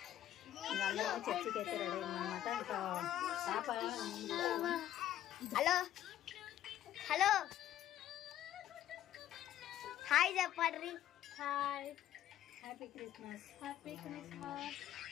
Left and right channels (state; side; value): quieter; right; 12.1 dB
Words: ఇంకా అందరం చర్చికి అయితే రెడీ అయిందనమాట. ఇంకా పాప హలో హలో హాయ్ చెప్పండి. Hi happy Christmas. Happy Christmas.